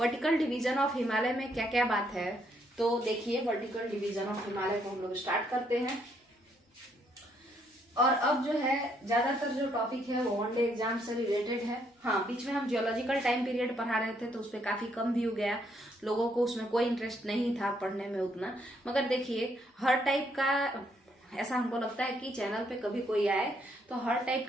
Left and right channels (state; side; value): normal; both; correlation 0.72